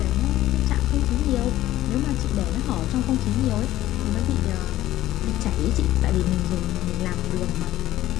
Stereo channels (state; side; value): quieter; right; 14.5 dB